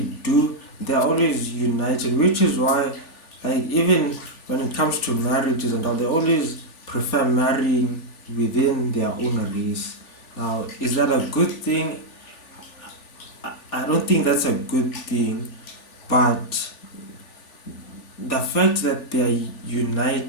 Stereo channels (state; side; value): late; right; 3.4 ms